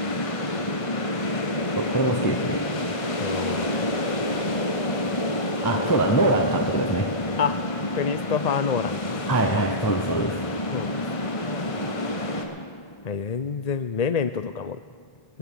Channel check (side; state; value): right; late; 1.5 ms